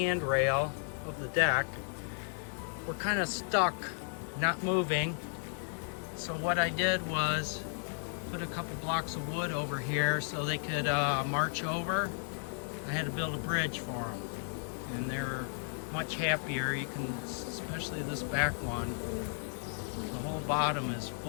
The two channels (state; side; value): silent; right; 55 dB below the other